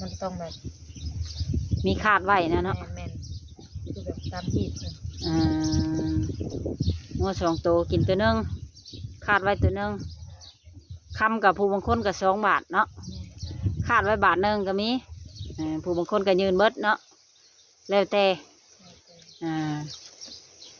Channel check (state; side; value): identical; both; correlation 1.00